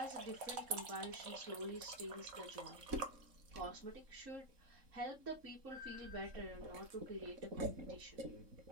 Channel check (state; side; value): late; left; 3.7 ms